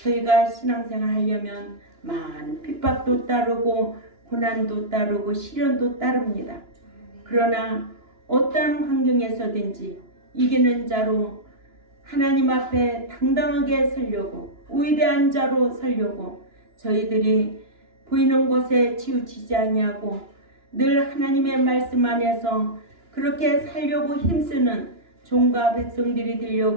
신앙생활 하려면 많은 핍박도 따르고 고난도 따르고 시련도 따릅니다. 그러나 어떠한 환경에서든지 이기는 자로 하나님 앞에 당당하게 서려고 위대한 자로 서려고 저희들이 보이는 곳에 치우치지 아니하고 늘 하나님의 말씀 안에서 그렇게 살려고 힘쓰는 종과 백성들이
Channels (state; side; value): late; left; 2.9 ms